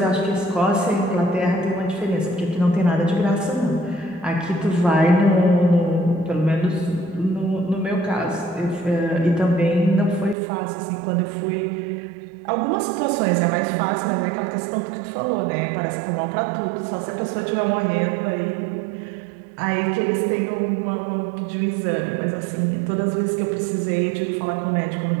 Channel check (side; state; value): left; drops out; at 10.4 s